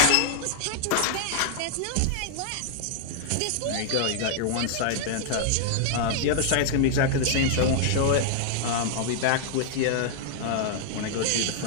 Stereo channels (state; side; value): different; both; correlation 0.00